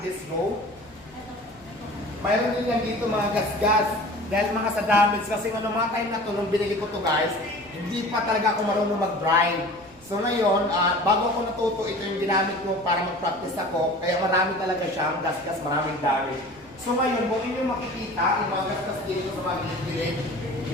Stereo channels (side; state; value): right; noise; rumble, 27 dB below the sound